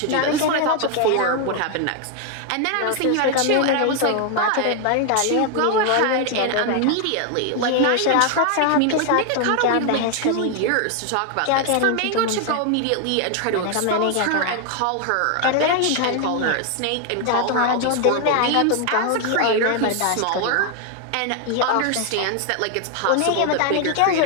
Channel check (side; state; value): both; different; correlation 0.00